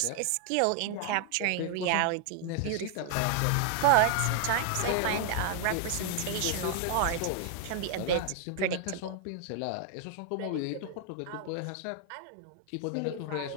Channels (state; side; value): different; both; correlation 0.00